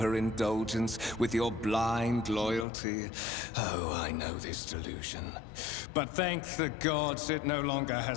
indulgence with your blind loyalty? Oh, I know this delusion. But thank the gods it no longer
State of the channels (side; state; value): right; drops out; at 2.7 s